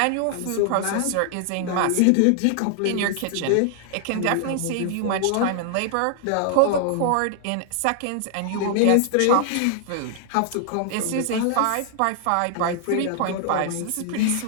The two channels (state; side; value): different; both; correlation 0.00